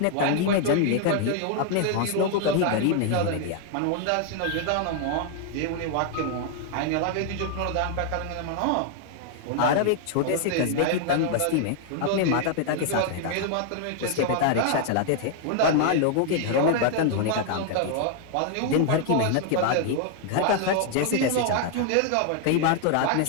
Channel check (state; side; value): different; both; correlation 0.00